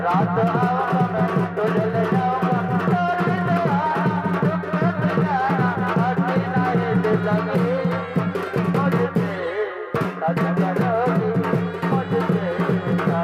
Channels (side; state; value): both; identical; correlation 1.00